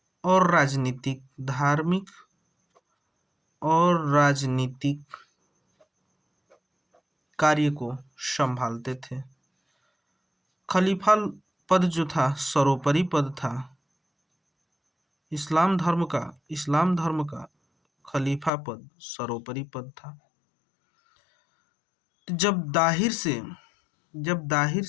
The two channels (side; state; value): right; drops out; at 18.5 s